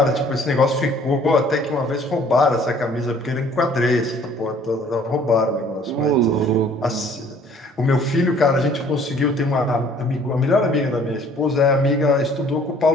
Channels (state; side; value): normal; both; correlation 0.56